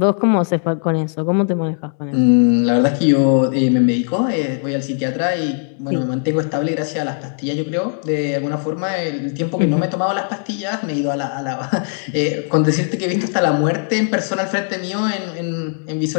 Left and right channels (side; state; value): right; silent; 67 dB below the other